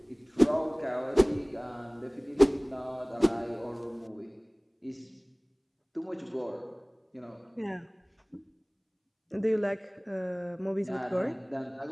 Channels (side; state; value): both; identical; correlation 1.00